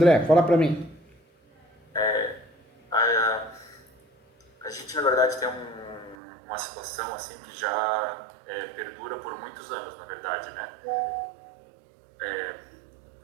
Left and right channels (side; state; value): left; drops out; at 6.2 s